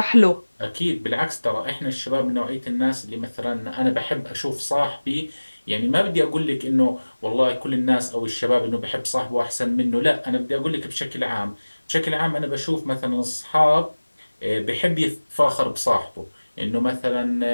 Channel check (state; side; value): inverted; both; correlation -1.00